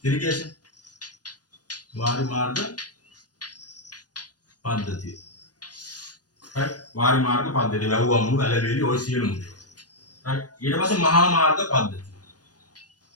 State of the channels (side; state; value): right; late; 0.69 ms